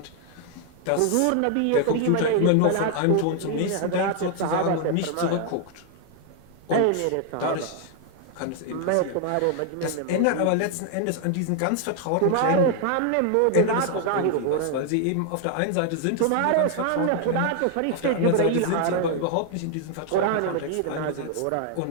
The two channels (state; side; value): different; both; correlation 0.00